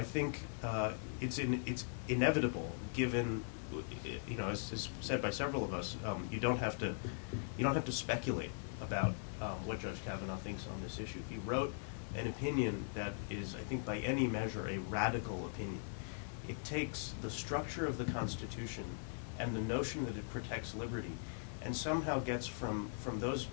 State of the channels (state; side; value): silent; right; 51 dB below the other